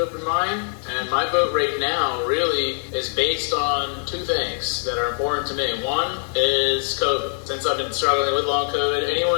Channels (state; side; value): silent; right; digital silence